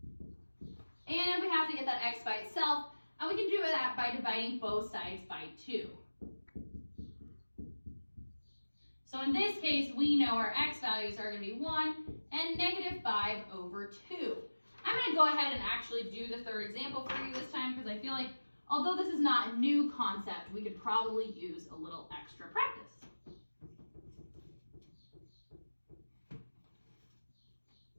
And we have to get that x by itself, and we can do that by dividing both sides by 2. So in this case, we know our x values are going to be 1 and -5/2. I'm going to go ahead and actually do the third example for you this time, because I feel like although this is not a new concept, we could probably use a little extra practice.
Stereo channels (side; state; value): both; inverted; correlation -1.00